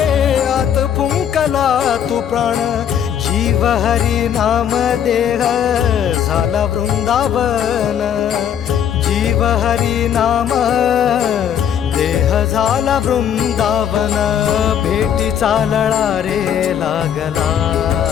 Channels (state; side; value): quieter; right; 9.1 dB